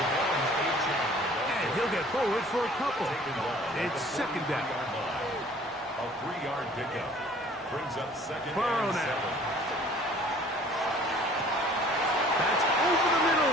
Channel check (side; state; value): both; normal; correlation 0.52